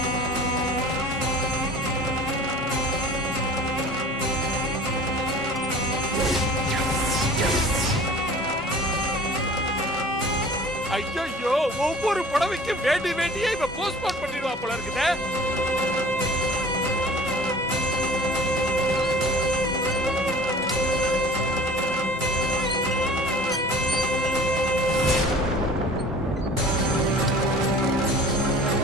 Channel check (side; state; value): both; normal; correlation 0.45